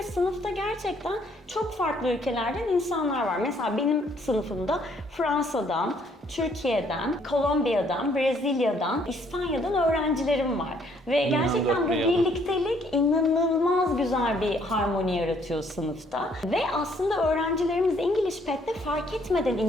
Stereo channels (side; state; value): both; normal; correlation 0.65